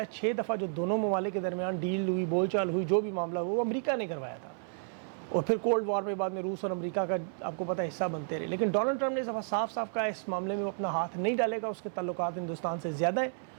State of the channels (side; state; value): left; silent; 57 dB below the other